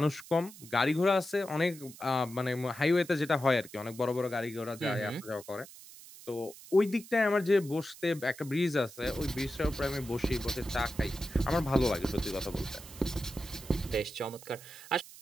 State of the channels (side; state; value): right; noise; hiss, 18 dB below the sound